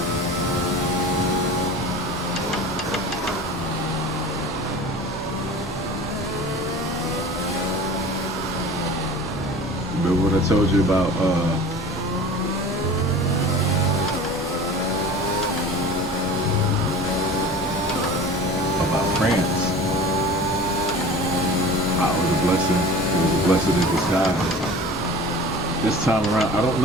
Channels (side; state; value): both; normal; correlation 0.39